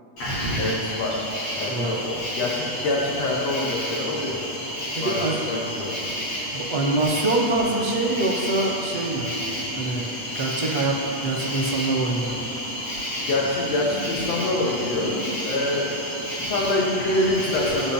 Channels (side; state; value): right; late; 8.3 ms